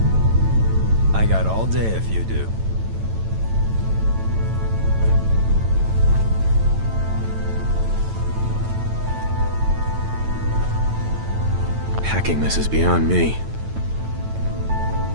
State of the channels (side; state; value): left; late; 9.0 ms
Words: I got all day if you do. Hacking this is beyond me.